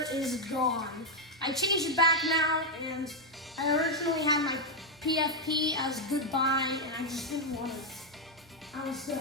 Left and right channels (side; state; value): both; normal; correlation 0.00